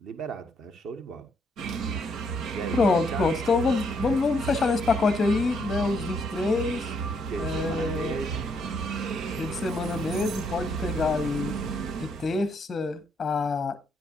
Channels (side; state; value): both; normal; correlation 0.73